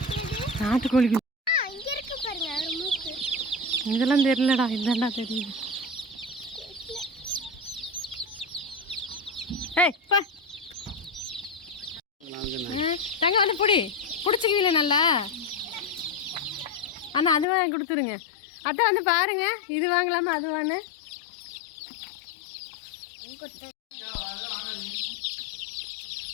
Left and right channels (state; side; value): drops out; right; at 17.4 s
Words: நாட்டு கோழி குஞ்சு இங்க இருக்கு பாருங்க, ஒரு மூக்கு. இதெல்லாம் தெரியலடா, இதாண்டா தெரியுது. ஏய் பா. தங்க வந்து பிடிச்சிக்குவீல நல்லா. அண்ணா அது வாங்கி கொடுத்துருங்க. அத்தை வந்து பாருங்க, இது வாங்கலாமா அது வாங்க.